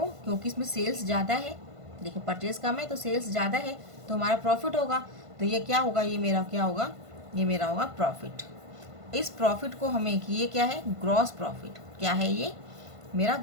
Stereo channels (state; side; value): late; left; 1.5 ms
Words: क्योंकि इसमें सेल्स ज़्यादा है। देखिए परचेज कम है तो सेल्स ज़्यादा है, तो हमारा प्रॉफिट होगा। तो ये क्या होगा, ये मेरा क्या होगा, ये मेरा होगा प्रॉफिट। इस प्रॉफिट को हमें, ये क्या है, ग्रॉस प्रॉफिट। क्या है ये? मेरा